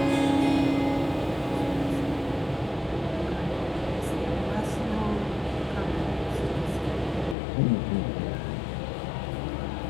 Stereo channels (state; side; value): drops out; right; at 7.4 s